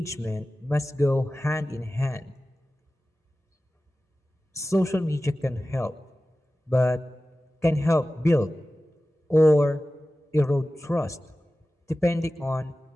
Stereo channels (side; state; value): both; normal; correlation 0.96